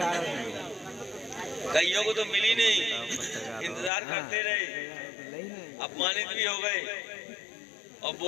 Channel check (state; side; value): drops out; right; at 3.9 s